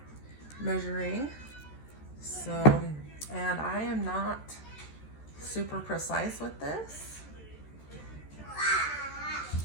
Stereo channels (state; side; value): late; right; 13 ms